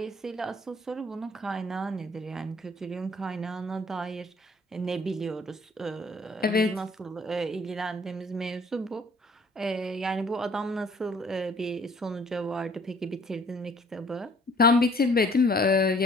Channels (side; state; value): both; normal; correlation 0.57